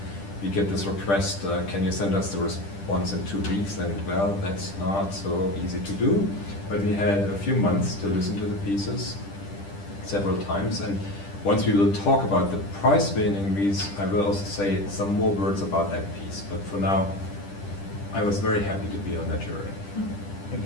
we get this request, can you send us the response in 2 weeks? And well, that's not so easy to do. But we had a few months to listen to the pieces several times. And once we will talk about the prize winning piece, I will also say some more words about that piece. But for now, I was very happy to be on that jury. Thank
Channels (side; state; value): right; late; 10 ms